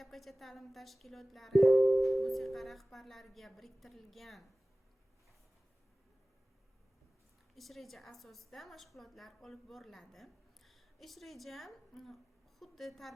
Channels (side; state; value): both; normal; correlation 0.98